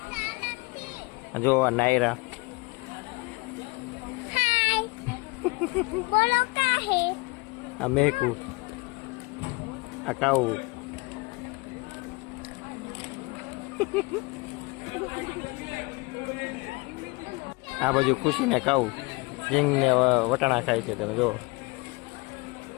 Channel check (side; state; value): right; quieter; 26.7 dB